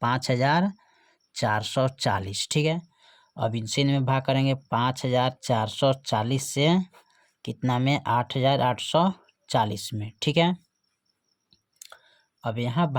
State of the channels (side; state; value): both; identical; correlation 1.00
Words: 5,440। ठीक है, अब इनसे इनमें भाग करेंगे 5,440 से कितना में 8,840 में। ठीक है, अब यहाँ